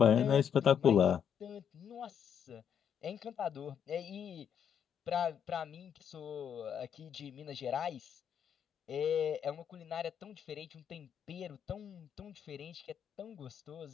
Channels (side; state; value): right; quieter; 8.3 dB